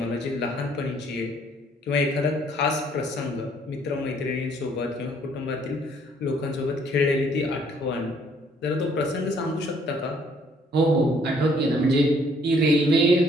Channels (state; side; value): normal; both; correlation 0.63